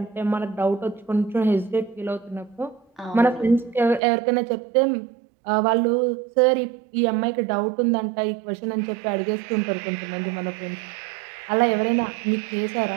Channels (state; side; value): drops out; left; at 4.0 s